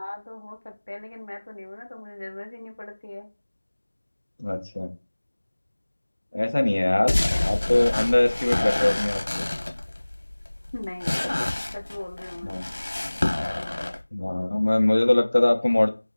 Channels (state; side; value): inverted; both; correlation -1.00